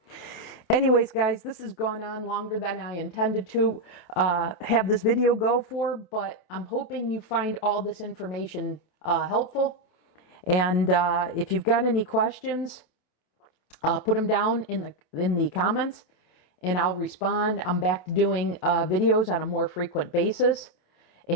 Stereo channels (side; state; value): right; late; 27 ms